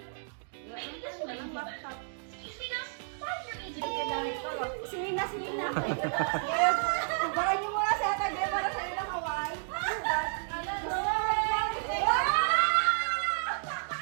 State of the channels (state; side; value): silent; left; digital silence